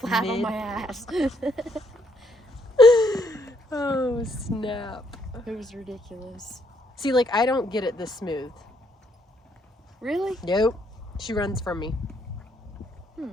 on my ass. Oh, snap. It was ridiculous. See, like, I don't get it this smooth. Really? Nope. She runs from me.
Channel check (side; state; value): both; normal; correlation 0.71